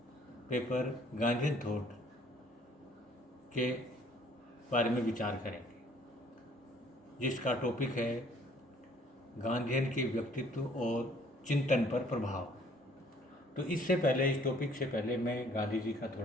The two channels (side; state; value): both; normal; correlation 0.58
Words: paper Gandhian thought के बारे में विचार करेंगे, जिसका टॉपिक है गांधीयन के व्यक्तित्व और चिंतन पर प्रभाव। तो इससे पहले, इस टॉपिक से पहले मैं गांधी जी का